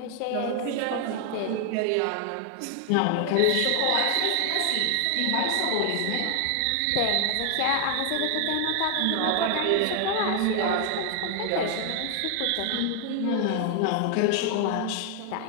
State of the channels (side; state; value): both; different; correlation 0.00